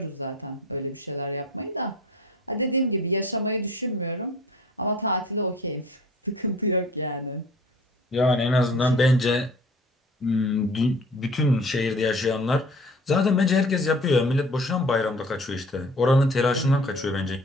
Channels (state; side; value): normal; both; correlation 0.46